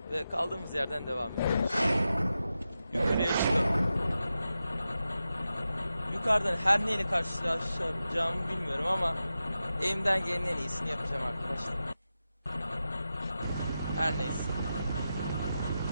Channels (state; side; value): inverted; both; correlation -0.91